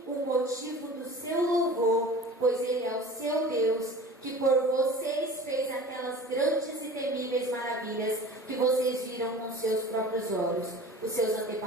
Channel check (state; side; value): normal; both; correlation 0.40